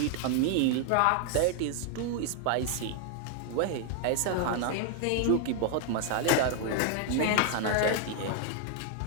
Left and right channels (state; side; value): different; both; correlation 0.00